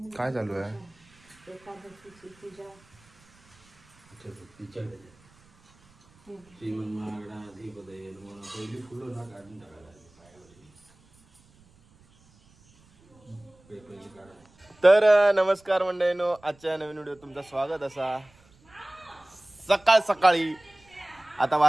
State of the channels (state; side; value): noise; right; rumble, 30 dB below the sound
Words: काय चालू आहे? श्रीमन महागणाधिपतये नमः. पहिली फुलं ना काढून टाकायला पहिली काढा. तर नमस्कार मंडळींनो, आजच्या नवीन व्हिडिओ तुमचं स्वागत असा. सकाळी आता